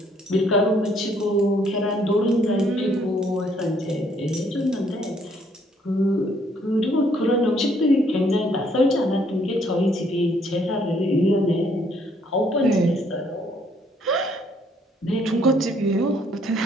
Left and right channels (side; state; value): both; normal; correlation 0.66